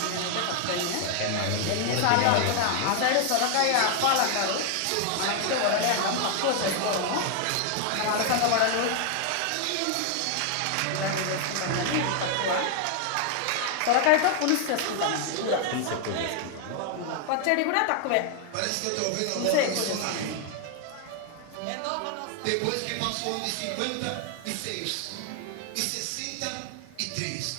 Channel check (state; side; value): different; both; correlation 0.00